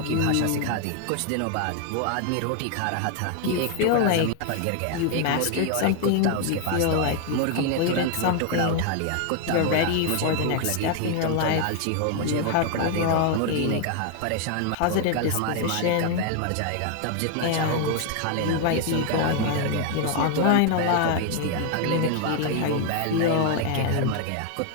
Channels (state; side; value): different; both; correlation 0.01